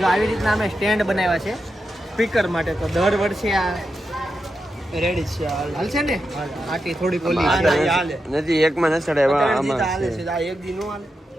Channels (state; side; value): normal; both; correlation 0.88